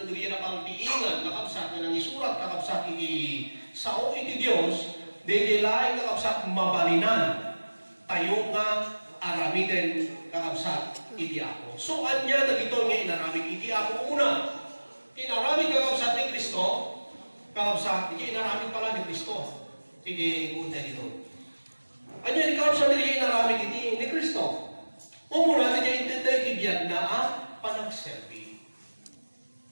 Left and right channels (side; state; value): both; inverted; correlation -1.00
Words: dyan napangtiingan kakabsat nga nang isurat kakabsat iti sao iti Diyos, di dyan laing kakabsat mabalinan tayo nga aramiden kakabsat iti ako. So anya na dito nga inaramid iti ako una. Inaramid kakabsat ni Kristo, kakabsat, hindi inaramid pala ni Kristo. Sige, punta dito. Ano yung kakabsat hindi inaramid ni Kristo? Umuna, hindi intentay tibiyag na panagserbi.